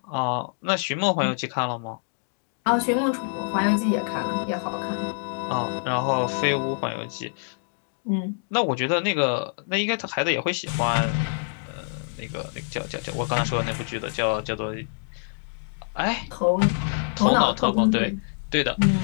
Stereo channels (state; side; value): silent; right; digital silence